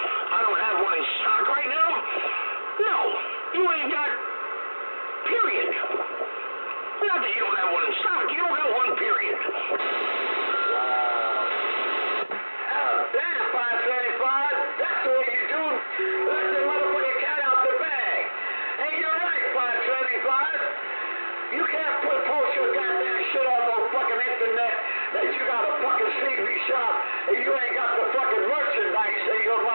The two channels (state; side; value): inverted; both; correlation -1.00